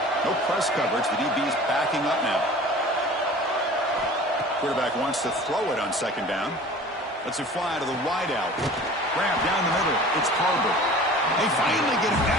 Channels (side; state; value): both; normal; correlation 0.43